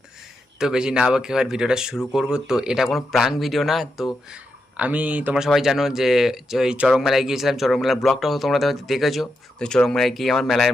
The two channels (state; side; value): normal; both; correlation 0.85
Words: তো বেশি না বকে এবার ভিডিওটা শুরু করব। তো এটা কোনো প্রাঙ্ক ভিডিও না। তো আমি, তোমরা সবাই জানো যে এই চড়ক মেলায় গিয়েছিলাম, চড়ক মেলার ব্লগটাও তোমরা হয়তো দেখেছো। তো চড়ক মেলায় গিয়ে আমার মেলার